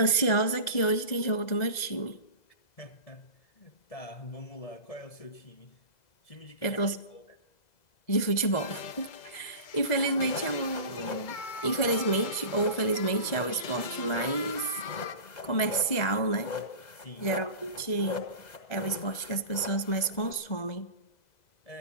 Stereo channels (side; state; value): right; late; 2.0 ms